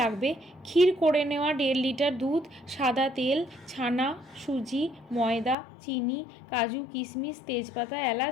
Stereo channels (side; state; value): right; drops out; at 5.6 s